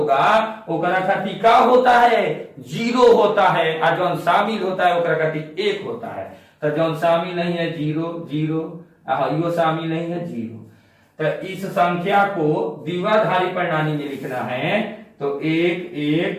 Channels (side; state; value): both; identical; correlation 1.00